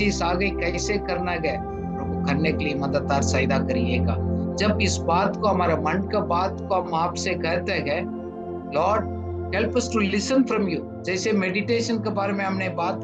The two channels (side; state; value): both; identical; correlation 1.00